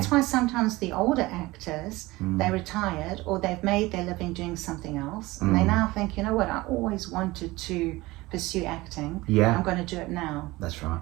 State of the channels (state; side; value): quieter; left; 20.3 dB